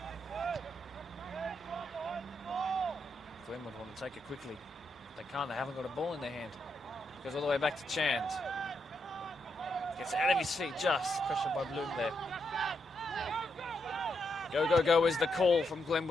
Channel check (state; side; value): normal; both; correlation 0.81